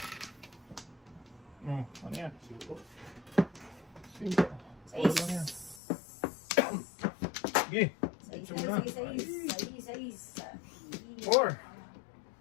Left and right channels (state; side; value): drops out; right; at 5.8 s